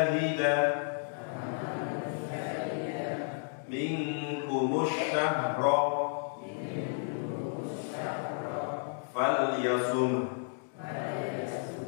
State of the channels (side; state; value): right; silent; 56 dB below the other